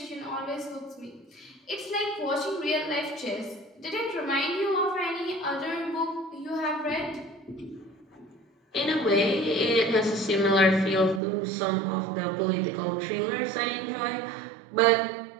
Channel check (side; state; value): left; drops out; at 11.2 s